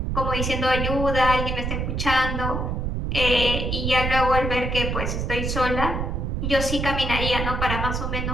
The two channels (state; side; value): noise; right; rumble, 1 dB below the sound